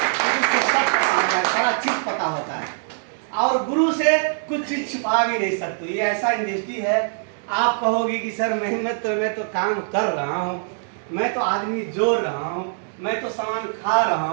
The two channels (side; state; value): left; silent; digital silence